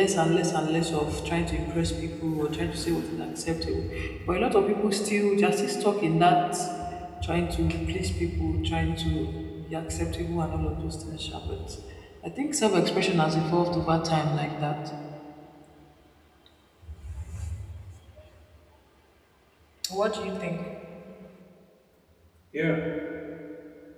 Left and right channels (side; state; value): both; identical; correlation 1.00